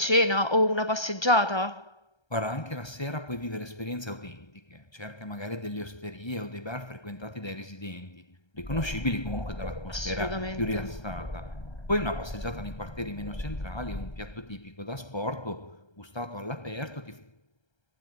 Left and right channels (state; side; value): late; right; 1.3 ms